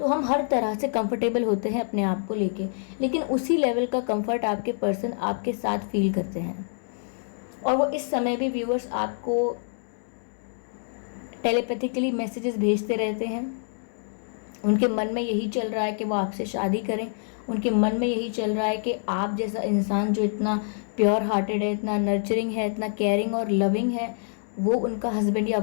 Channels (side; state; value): right; silent; digital silence